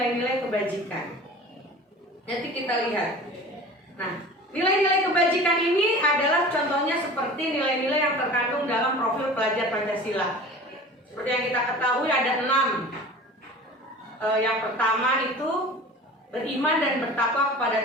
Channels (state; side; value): normal; both; correlation 0.39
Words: kebajikan. Nanti kita lihat. Nah, nilai-nilai kebajikan ini adalah contohnya seperti nilai-nilai yang terkandung dalam profil pelajar Pancasila. Seperti yang kita ketahui ada 6. Yang pertama itu beriman dan bertakwa kepada